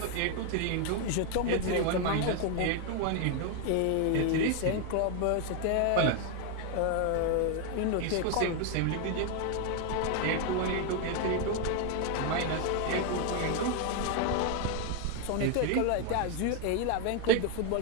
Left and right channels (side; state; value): both; different; correlation 0.01